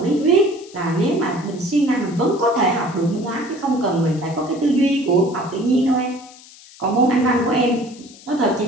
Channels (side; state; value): left; noise; hiss, 22 dB below the sound